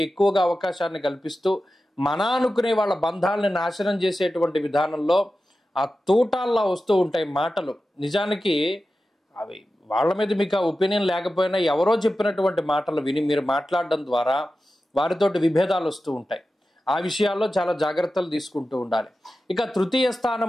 ఎక్కువగా అవకాశాన్ని కల్పిస్తూ మన అనుకునే వాళ్ళ బంధాలని నాశనం చేసేటువంటి విధానంలో ఆ తూటాల్లా వస్తూ ఉంటాయి మాటలు. నిజానికి అవి వాళ్ళ మీద మీకు ఆ ఒపీనియన్ లేకపోయినా ఎవరో చెప్పినటువంటి మాటలు విని మీరు మాట్లాడడం ద్వారా వారితోటి విభేదాలు వస్తూ ఉంటాయి. ఆ విషయాల్లో చాలా జాగ్రత్తలు తీసుకుంటూ ఉండాలి. ఇక 3వ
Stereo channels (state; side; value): normal; both; correlation 0.93